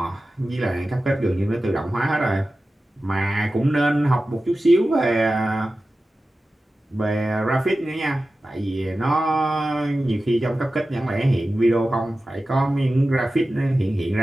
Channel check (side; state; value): both; normal; correlation 0.94